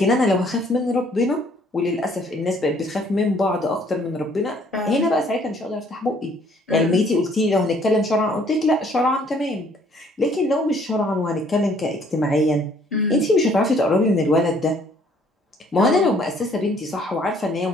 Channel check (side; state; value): both; normal; correlation 0.61